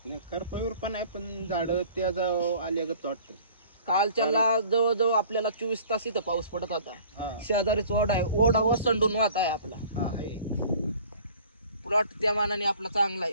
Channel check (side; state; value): both; inverted; correlation -0.49